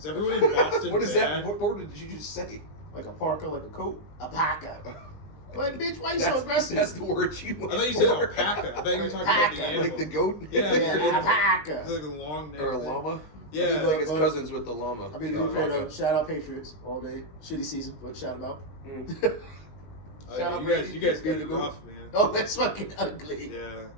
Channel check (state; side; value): late; right; 20 ms